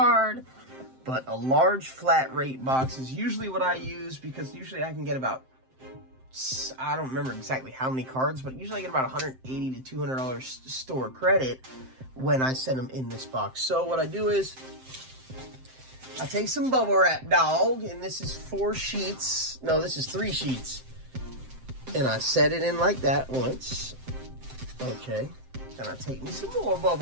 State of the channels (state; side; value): late; left; 7.7 ms